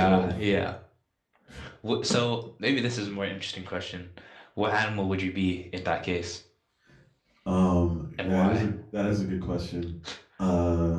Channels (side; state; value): both; identical; correlation 1.00